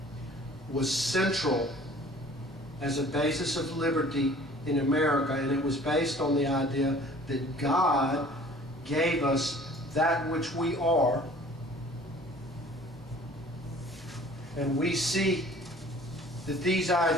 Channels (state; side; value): normal; both; correlation 0.50